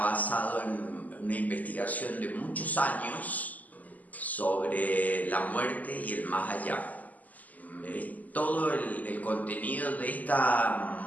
en una investigación de muchos años sobre la muerte y el más allá. Todo el contenido de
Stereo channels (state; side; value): late; right; 0.079 ms